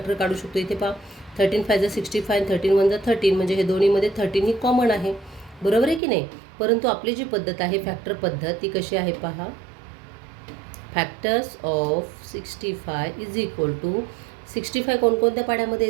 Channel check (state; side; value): drops out; left; at 6.0 s